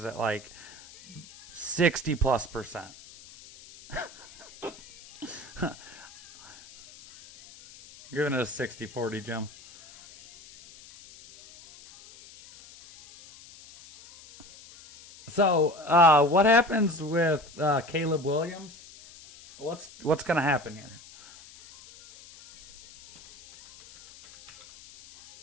at like 60+%. Giving it a 60-40, Jim. So, what happens with Caleb Williams? What's going to happen here?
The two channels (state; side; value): noise; left; hiss, 21 dB below the sound